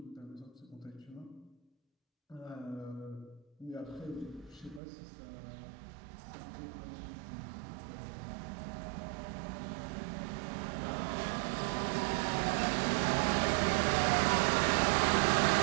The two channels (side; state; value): left; drops out; at 4.8 s